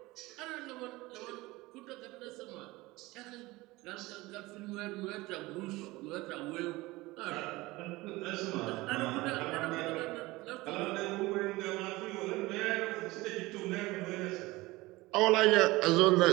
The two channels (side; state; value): left; quieter; 20.6 dB